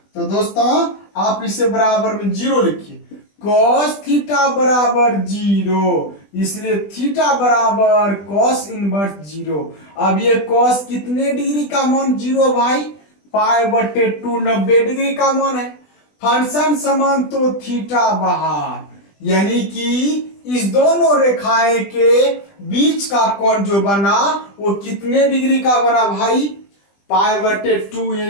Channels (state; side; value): late; right; 20 ms